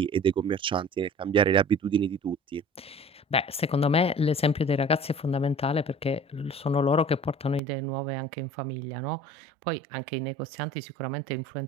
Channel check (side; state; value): left; drops out; at 7.6 s